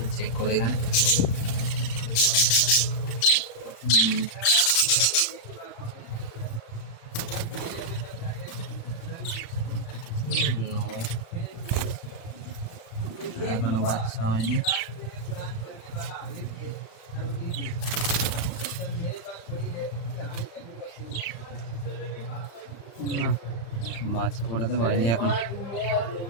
চেক করে এখানে। এখনো বাচ্চা হয়নি। না, বাচ্চা ফোটাতে পারিনি এখন।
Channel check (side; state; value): right; late; 35 ms